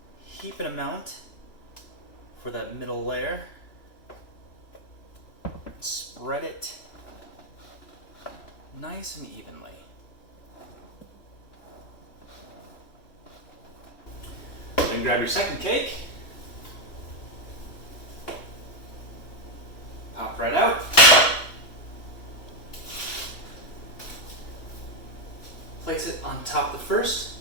heaping amount for that middle layer. Spread it nice and evenly. Then grab your second cake. Pop right out. Place it on top of the first.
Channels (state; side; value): late; right; 2.9 ms